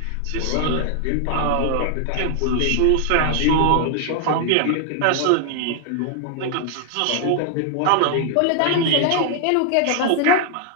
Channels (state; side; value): different; both; correlation 0.00